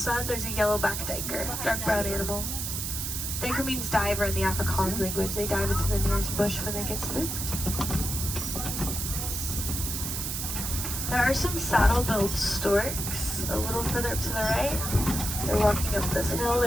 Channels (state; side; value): noise; right; hiss, 3 dB below the sound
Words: there's a yellow-backed duiker, dark brown animal. Duiker means diver in the Afrikaans language. They dive into the nearest bush when they get spooked. There are some saddle-billed storks a little further up to the right. They're walking up this hill.